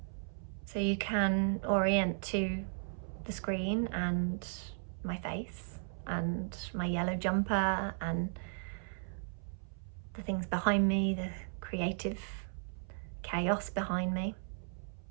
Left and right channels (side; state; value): left; silent; 54 dB below the other